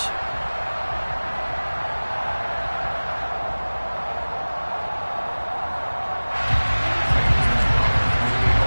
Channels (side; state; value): both; inverted; correlation -1.00